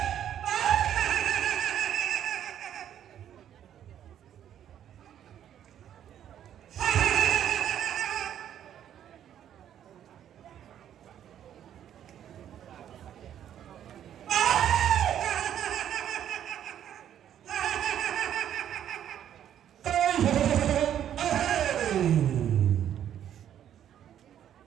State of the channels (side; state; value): left; quieter; 10.3 dB